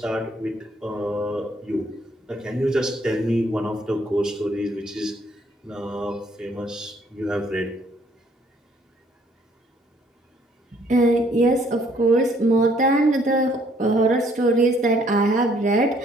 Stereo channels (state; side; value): normal; both; correlation 0.64